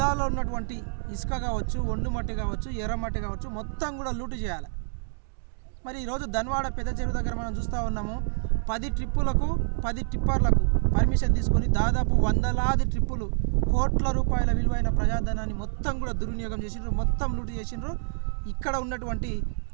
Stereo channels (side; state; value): left; silent; digital silence